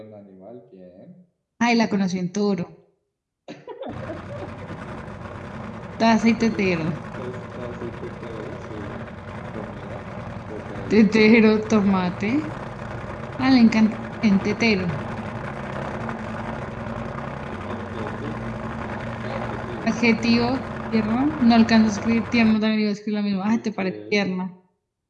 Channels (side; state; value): both; identical; correlation 1.00